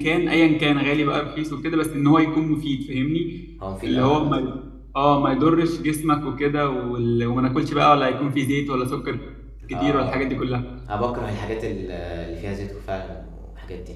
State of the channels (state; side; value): identical; both; correlation 1.00